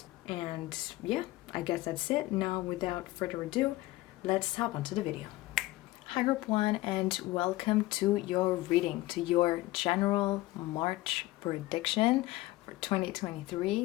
And yeah, I guess that's it. Now, without further ado, let's hop onto the video. Hi group 1, and welcome to your reading, to your general March prediction for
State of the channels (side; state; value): right; quieter; 18.3 dB